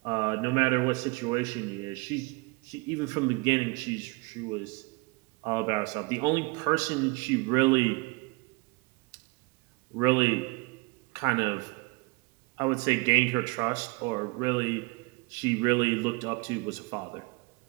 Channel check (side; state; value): left; quieter; 27.5 dB